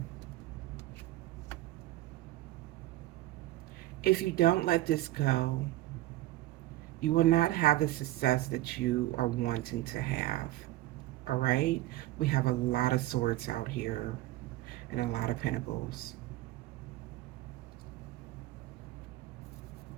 If you don't let this go, you will not have the success that you are wanting to have. All right? We have a lot of swords out here and a lot of pentacles.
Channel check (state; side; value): quieter; left; 16.3 dB